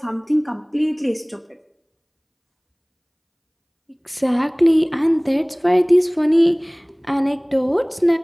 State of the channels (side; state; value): both; identical; correlation 1.00